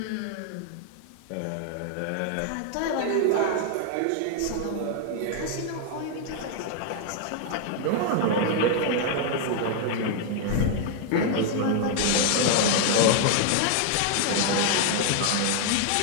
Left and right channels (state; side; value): different; both; correlation 0.00